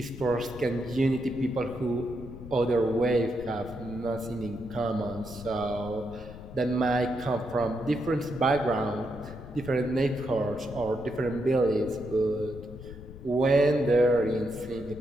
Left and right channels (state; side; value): noise; left; rumble, 14 dB below the sound